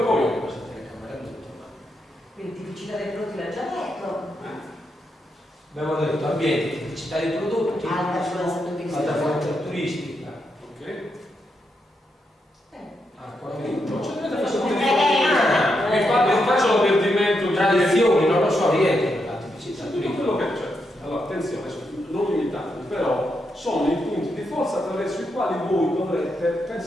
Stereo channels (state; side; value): normal; both; correlation 0.82